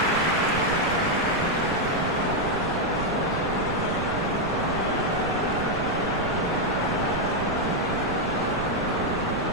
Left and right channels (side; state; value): right; noise; rumble, 8 dB below the sound